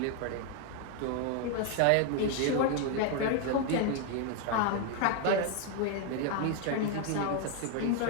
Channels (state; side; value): different; both; correlation 0.01